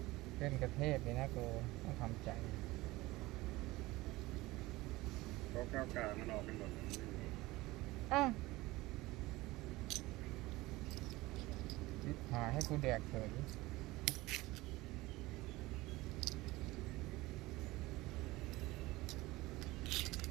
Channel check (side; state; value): left; quieter; 19.8 dB